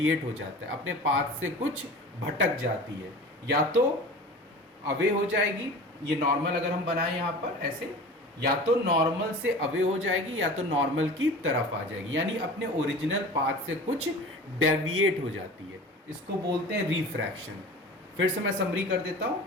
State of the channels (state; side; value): normal; both; correlation 0.38